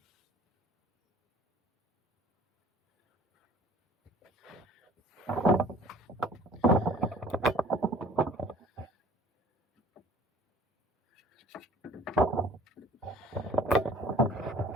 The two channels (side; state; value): both; normal; correlation 0.49